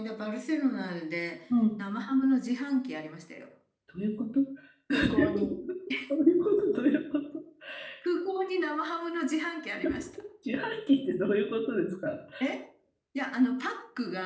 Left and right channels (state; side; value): identical; both; correlation 1.00